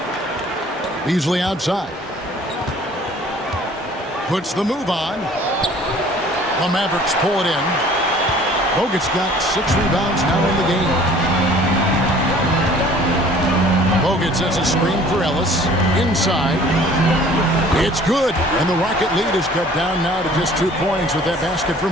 Beasley outside. Puts the move on. The Mavericks pull it in. Bogut's got 6 rebounds now in the game. Bogut sets a screen for Ellis. Inside. It's good. And the Rocket lead is cut down now to just 2 points with that basket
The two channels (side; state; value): both; normal; correlation 0.51